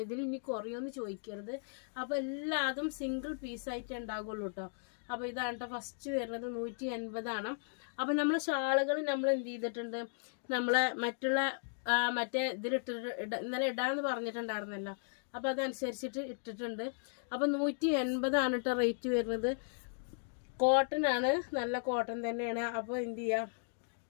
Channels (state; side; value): silent; right; digital silence